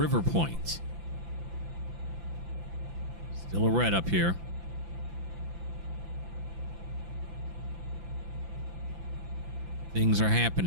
Point. Still a red up here. Things are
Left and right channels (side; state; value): left; late; 5.9 ms